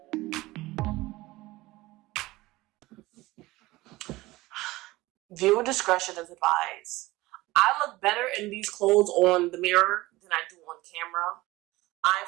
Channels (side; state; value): left; quieter; 19.3 dB